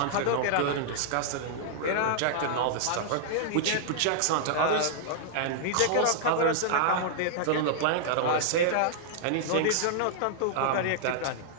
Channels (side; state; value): both; different; correlation -0.01